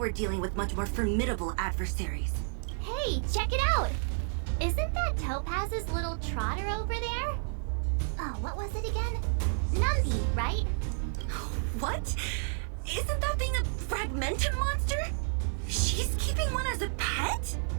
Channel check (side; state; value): left; silent; 57 dB below the other